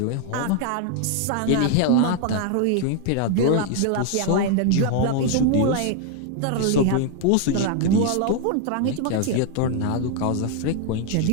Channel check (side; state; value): both; different; correlation 0.00